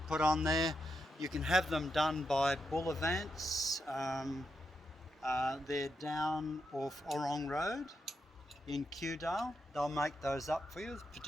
put on there. You can have them done by Bullavants. They're down off Orong Road in Kewdale. They'll make those up for you,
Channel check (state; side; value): normal; both; correlation 0.84